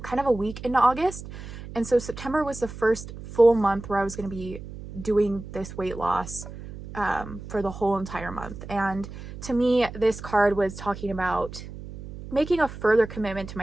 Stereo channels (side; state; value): right; noise; hum, 12 dB below the sound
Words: of a week into August. And so September was the first full month where I was going to be doing this weight loss for the whole entire month. And to me, this card was talking about making a further commitment to